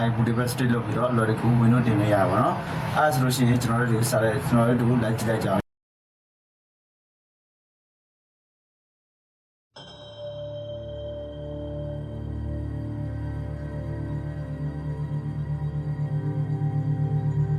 င်း bootable stick လုပ်ပြီးတော့အလွယ်တကူ Windows တင်လို့ရပါတော့အဲ့ဒါဆိုလို့ရှိရင်ကျွန်တော်တို့စာရဲကျွန်တော်တို့လိုက်ကြည့်လိုက်ကြအောင်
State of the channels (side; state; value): both; identical; correlation 1.00